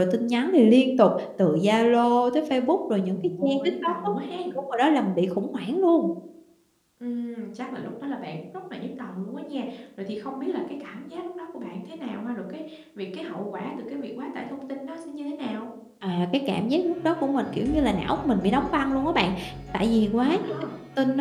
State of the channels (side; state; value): both; identical; correlation 1.00